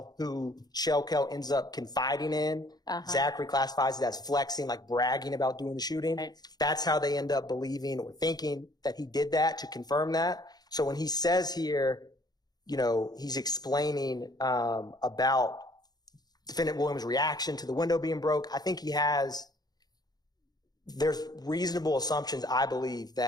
who Shell Kell ends up confiding in, Zachary classifies it as flexing, like bragging about doing the shooting. Right. That's how they end up believing or thinking that he did that, to confirm that. So when he says here, you know, he's explaining about Defendant Williams' reaction to the window being broke, I think there's reasonable assumptions, I believe,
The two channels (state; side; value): late; right; 0.19 ms